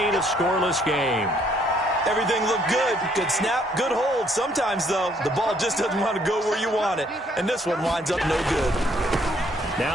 a scoreless game. Everything looked good. Good snap, good hold. Sometimes, though, the ball just doesn't want to go where you want it, and this one winds up no good.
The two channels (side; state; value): both; normal; correlation 0.66